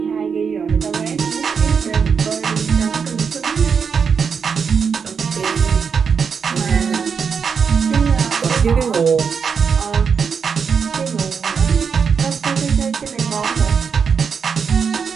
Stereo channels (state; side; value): quieter; left; 6.2 dB